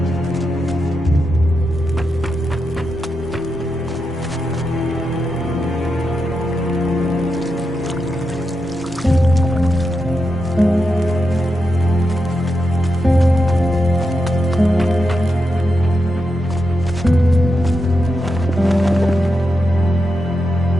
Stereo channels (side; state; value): both; normal; correlation 0.87